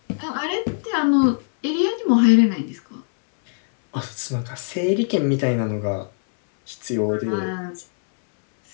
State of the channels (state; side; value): silent; right; 65 dB below the other